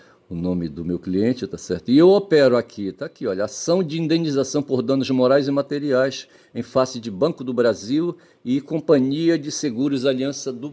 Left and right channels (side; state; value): both; identical; correlation 1.00